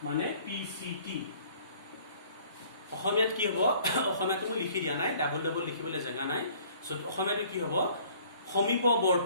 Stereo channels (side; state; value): both; inverted; correlation -0.55